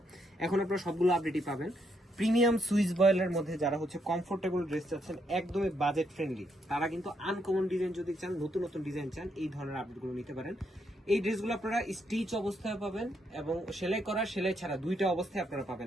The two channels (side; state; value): both; normal; correlation 0.76